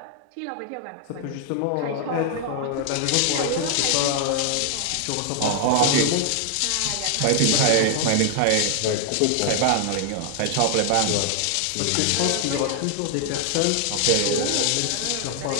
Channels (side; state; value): both; different; correlation 0.00